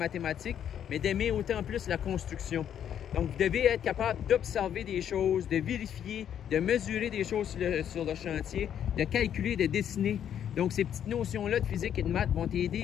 mais d'aimer autant plus la construction. Donc, vous devez être capable d'observer des choses, de vérifier, de mesurer des choses sur le chantier, de calculer, de dessiner. Donc, ces petites notions-là de physique et de maths vont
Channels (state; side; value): quieter; right; 9.5 dB